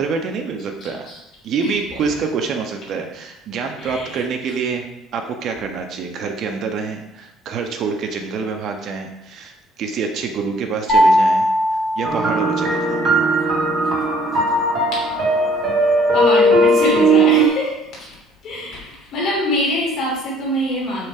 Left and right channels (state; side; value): normal; both; correlation 0.58